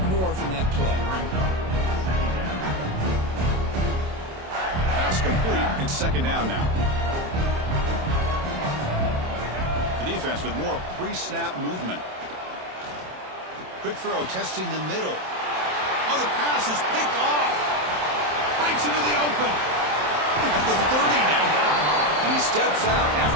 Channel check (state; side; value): late; left; 27 ms